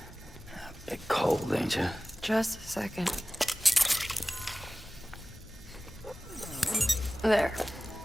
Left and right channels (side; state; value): both; normal; correlation 0.97